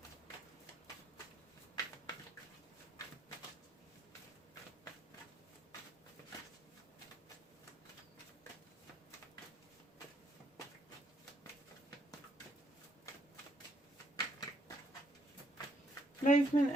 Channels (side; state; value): both; normal; correlation 0.72